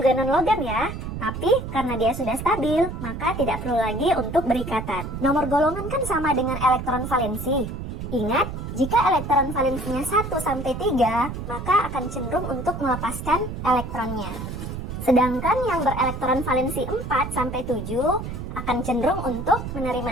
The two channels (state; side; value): noise; right; rumble, 7 dB below the sound